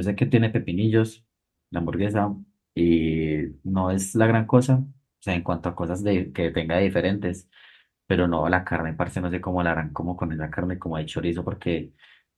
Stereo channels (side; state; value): both; identical; correlation 1.00